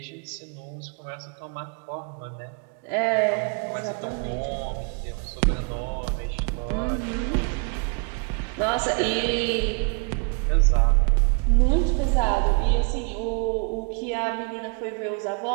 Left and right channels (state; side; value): quieter; left; 37.6 dB